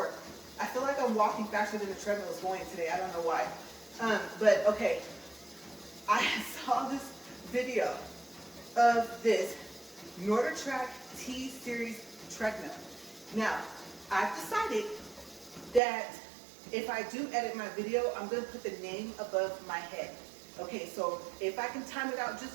I feel like I'm walking faster than the treadmill is going today. I don't know why. But okay, I saw this video of this NordicTrack T-Series treadmill. Now, I've decided that if I do edit my video, I'm going to put the name above my head. Okay, so if I can time it out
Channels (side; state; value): left; drops out; at 15.8 s